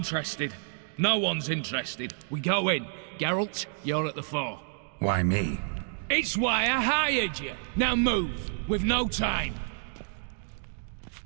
No one's interested. We go in. Geralt, you're at the fore. Why me? It's why I hired you. Now move. We've no time.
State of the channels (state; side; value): silent; left; 58 dB below the other